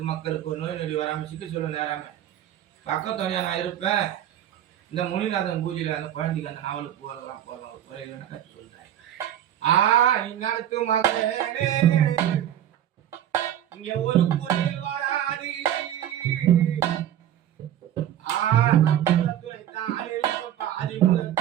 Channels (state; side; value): quieter; left; 11.1 dB